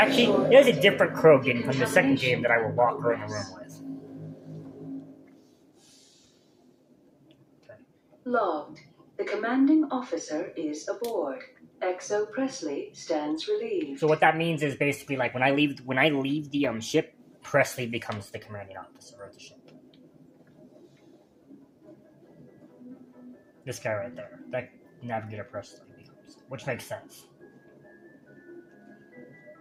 there's a different Krogan from the second game that I will lock her in a room with. Okay. Logged. The commanding officer is aboard. Exo Presley stands relieved. So what that means is basically like when I leave the ship, Presley becomes the commanding officer of the ship. This guy right there. That Navigator Presley becomes. Which makes sense.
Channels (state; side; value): identical; both; correlation 1.00